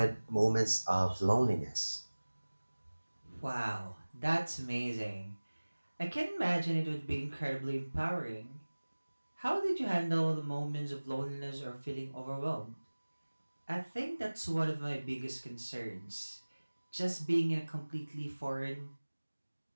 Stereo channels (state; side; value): inverted; both; correlation -1.00